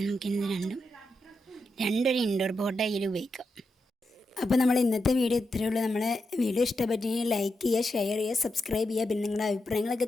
രണ്ടൊരു ഇൻഡോർ പോട്ടായി ഉപയോഗിക്കാം. അപ്പോൾ നമ്മൾ ഇന്നത്തെ വീഡിയോ ഇത്രയേ ഉള്ളൂ. നമ്മളെ വീഡിയോ ഇഷ്ടപ്പെട്ടെങ്കിൽ ലൈക്ക് ചെയ്യുക, ഷെയർ ചെയ്യുക, സബ്സ്ക്രൈബ് ചെയ്യുക. പിന്നെ നിങ്ങളുടെ അഭിപ്രായങ്ങളൊക്കെ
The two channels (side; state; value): both; normal; correlation 0.86